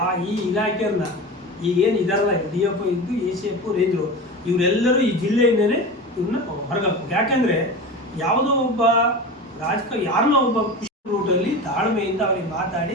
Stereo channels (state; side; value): normal; both; correlation 0.29